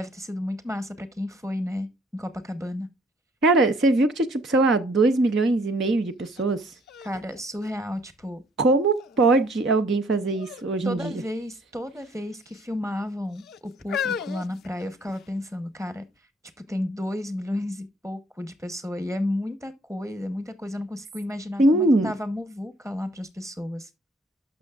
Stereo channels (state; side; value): normal; both; correlation 0.62